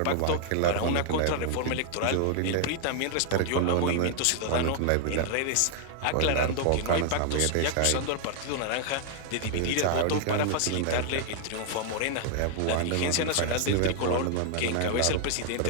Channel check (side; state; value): both; different; correlation 0.00